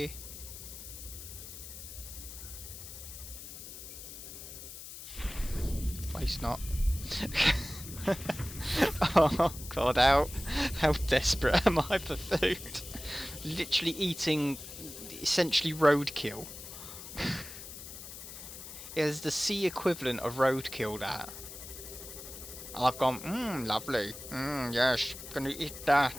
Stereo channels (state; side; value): noise; left; hiss, 12 dB below the sound